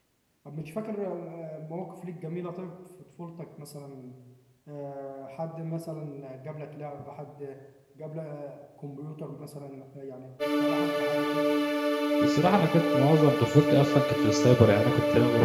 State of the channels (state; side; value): identical; both; correlation 1.00